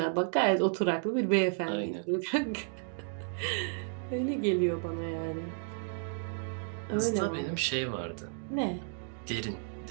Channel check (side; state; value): left; silent; 56 dB below the other